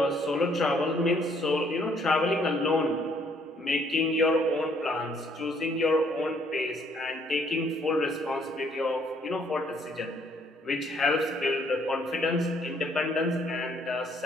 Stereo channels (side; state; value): both; normal; correlation 0.65